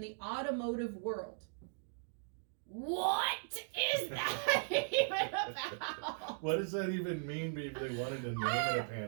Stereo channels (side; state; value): left; silent; digital silence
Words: the Automotive World. What is that even about? What does that even mean if they wanted to name it a